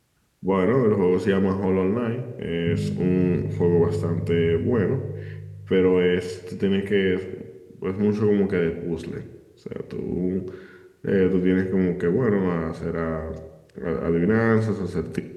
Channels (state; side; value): identical; both; correlation 1.00